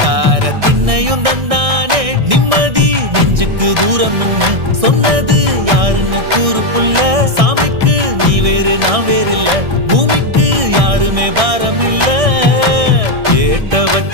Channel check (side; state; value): left; late; 1.6 ms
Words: திண்ணையும் தந்தானே நிம்மதி நெஞ்சுக்கு தூரம்னு சொன்னது யாருன்னு கூறு புள்ள சாமிக்கு நீ வேறு நான் வேறு இல்ல பூமிக்கு யாருமே பாரம் இல்ல ஏத்த